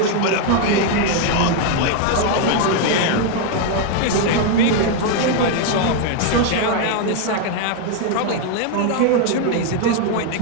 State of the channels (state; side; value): different; both; correlation 0.01